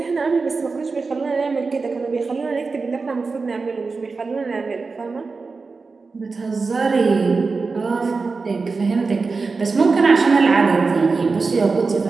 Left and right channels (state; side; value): quieter; left; 4.3 dB